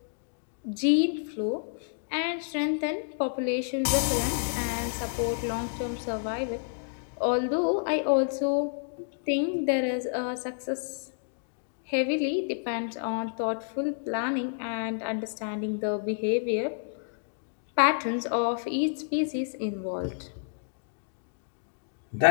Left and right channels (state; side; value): silent; right; digital silence